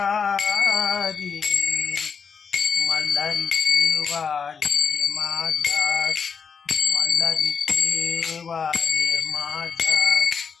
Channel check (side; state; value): right; quieter; 6.2 dB